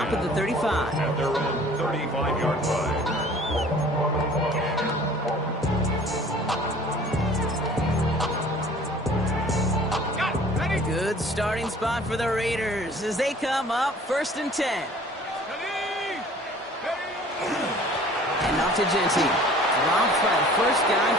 at the 35. At their own 35-yard line. Good starting spot for the Raiders as they come up 1st and 10. And off to Genty. Dropped by the first guy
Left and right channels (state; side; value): normal; both; correlation 0.50